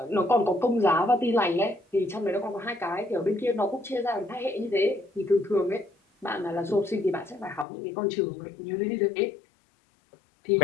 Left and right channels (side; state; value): right; drops out; at 7.7 s